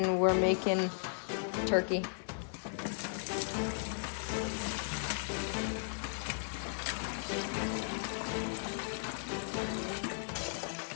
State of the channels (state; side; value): silent; right; digital silence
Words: we're making turkey.